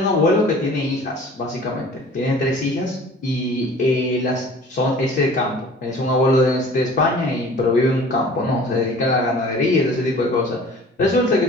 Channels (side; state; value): both; normal; correlation 0.46